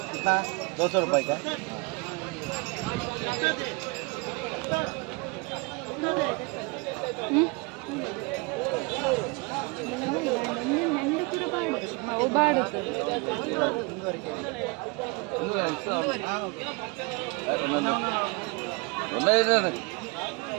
200 रुपए का। ಅವು ಬಾಡು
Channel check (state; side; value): quieter; left; 28.4 dB